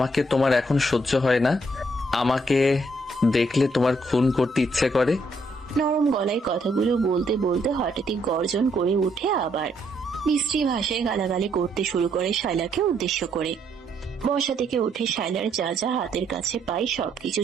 তোমার এখন সহ্য হয় না, আমাকে দেখলে তোমার খুন করতে ইচ্ছে করে। নরম গলায় কথাগুলো বলতে বলতে হঠাৎই গর্জন করে উঠে আবার মিস্ত্রি ভাষায় গালাগালি করতে শুরু করে শায়লাকে উদ্দেশ্য করে। বসা থেকে উঠে শায়লার যা যা হাতের কাছে পায় সবকিছু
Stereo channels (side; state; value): both; normal; correlation 0.72